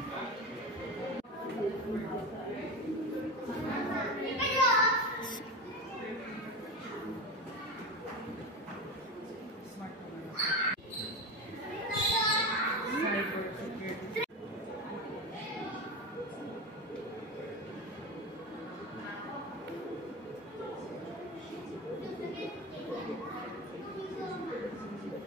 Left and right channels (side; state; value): both; normal; correlation 0.22